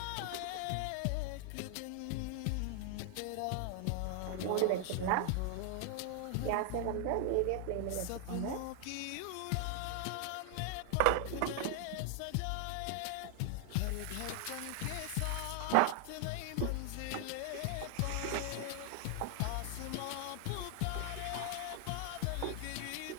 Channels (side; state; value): both; different; correlation 0.00